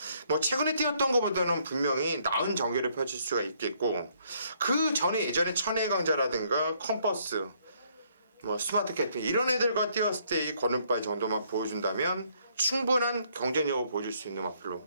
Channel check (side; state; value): both; inverted; correlation -0.68